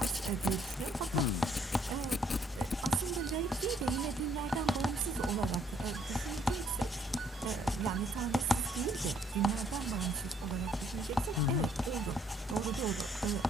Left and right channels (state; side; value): normal; both; correlation 0.66